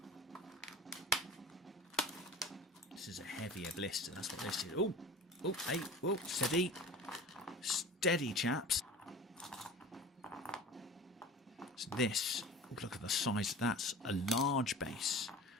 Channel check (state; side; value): normal; both; correlation 0.38